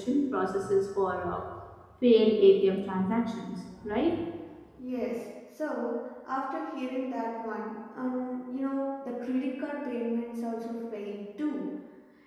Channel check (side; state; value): both; identical; correlation 1.00